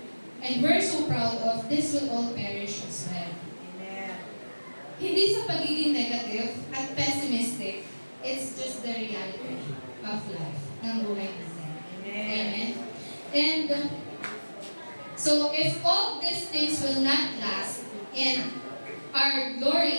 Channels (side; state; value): both; inverted; correlation -1.00